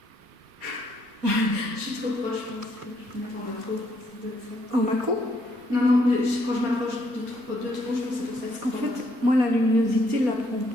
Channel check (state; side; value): late; left; 4.5 ms